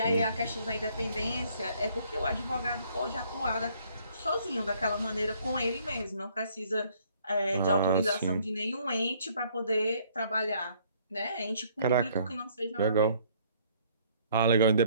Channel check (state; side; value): inverted; both; correlation -0.63